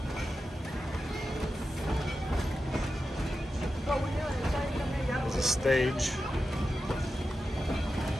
There's a stage.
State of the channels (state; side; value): normal; both; correlation 0.91